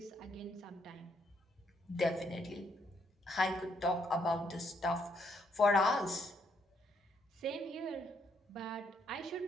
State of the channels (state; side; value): normal; both; correlation 0.73